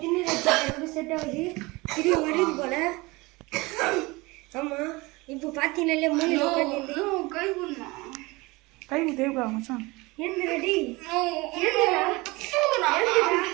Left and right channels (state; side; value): quieter; left; 23.3 dB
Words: தின்னு வச்சு செட் ஆகுது. திரும்பி வருது போல. ஆமாம் இப்போ பார்த்தீங்கன்னாலே மூணு கை தேவைக்கா மச்சான். என்ன ரெடி